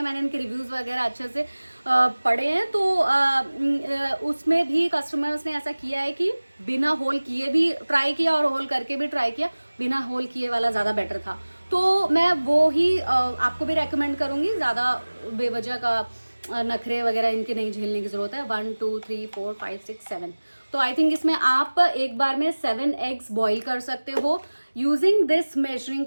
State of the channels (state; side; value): inverted; both; correlation -1.00